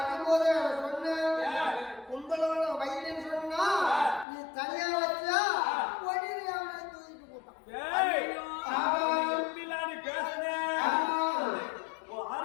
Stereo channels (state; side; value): drops out; right; at 4.2 s